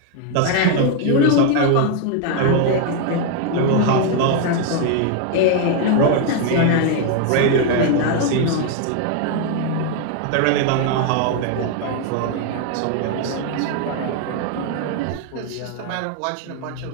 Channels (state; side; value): different; both; correlation 0.00